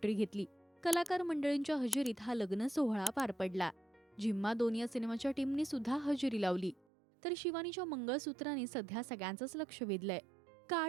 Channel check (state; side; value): drops out; left; at 6.9 s